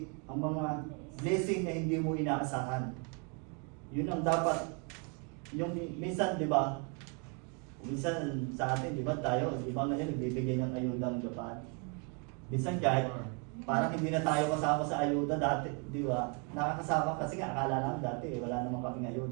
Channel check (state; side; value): quieter; left; 36.3 dB